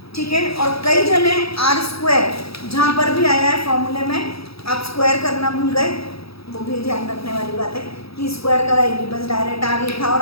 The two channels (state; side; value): late; right; 0.77 ms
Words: ठीक है। और कई जने आर स्क्वायर जहाँ पर भी आया है फॉर्मूले में आप स्क्वायर करना भूल गए, वो भी ध्यान रखने वाली बात है कि स्क्वायर करा ही नहीं, बस डायरेक्ट आर लिखा और